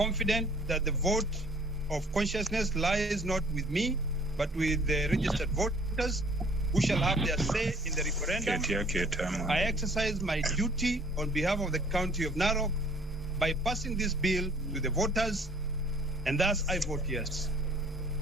that the vote of consciousness lies not with me, but with the registered voters who shall have their say in the referendum. I exercise my duty on behalf of the county of Narok by passing this bill to the voters, and thus I vote yes.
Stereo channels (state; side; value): normal; both; correlation 0.56